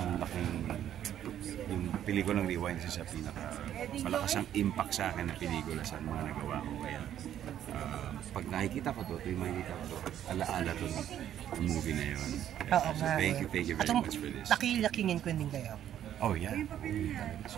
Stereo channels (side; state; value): left; quieter; 10.8 dB